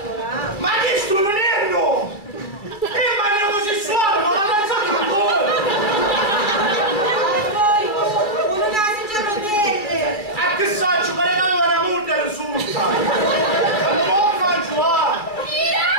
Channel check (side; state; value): right; late; 2.3 ms